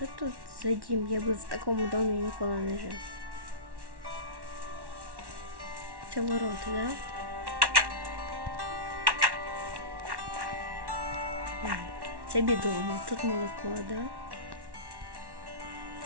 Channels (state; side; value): late; left; 1.1 ms